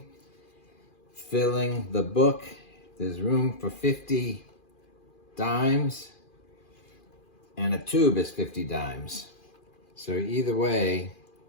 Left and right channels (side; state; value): right; late; 2.4 ms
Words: Filling the book, there's room for 50 dimes, and a tube is 50 dimes. So either way,